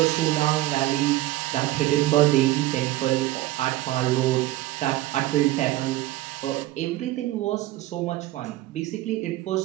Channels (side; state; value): left; quieter; 16.7 dB